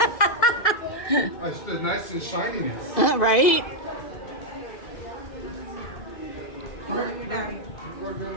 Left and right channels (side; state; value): right; late; 2.0 ms